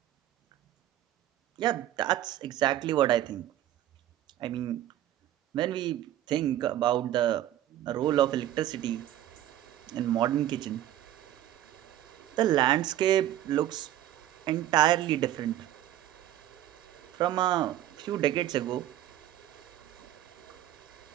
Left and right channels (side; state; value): left; quieter; 12.8 dB